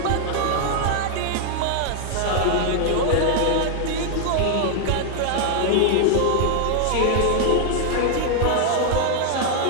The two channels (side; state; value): both; different; correlation 0.00